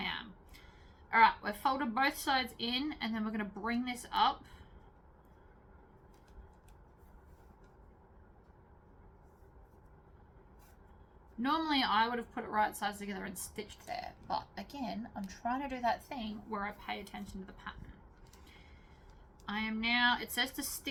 am. All right, we've folded both sides in, and then we're going to bring this up. Normally, I would have put it right sides together and stitched there, but again, I'm trying to do that thing where I pay attention to the pattern. I am now, it says to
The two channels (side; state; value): both; identical; correlation 1.00